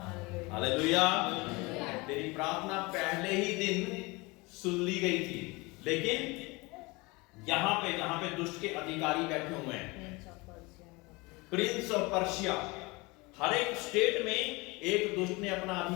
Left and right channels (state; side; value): quieter; right; 24.9 dB